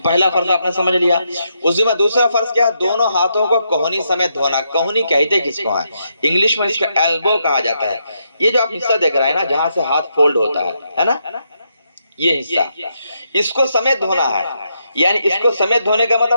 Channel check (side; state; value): both; inverted; correlation -0.80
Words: فرض آپ نے سمجھ لیا. وضو میں دوسرا فرض کیا ہے؟ دونوں ہاتھوں کو کوہنی سمیت دھونا. کوہنی کہتے کس کو ہیں؟ انگلش میں اس کو ایلبو کہا جاتا ہے. یہ جو آپ حصہ دیکھ رہے ہیں نا جہاں سے ہاتھ فولڈ ہوتا ہے نا، یہ حصہ اس کو سمیت دھونا ہے. یعنی اس کو سمیت دھونے کا